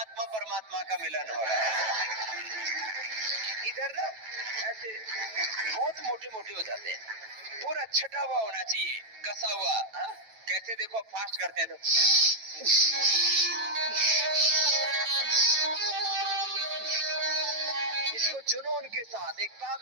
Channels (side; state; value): left; late; 9.1 ms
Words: परमात्मा का मिलन हो रहा है। इधर ना ऐसे बहुत मोटे मोटे हो जाते हैं, पूरा छटा हुआ होना चाहिए, कसा हुआ। कैसे देखो फास्ट करते हैं तो इसको जुनून के साथ, एक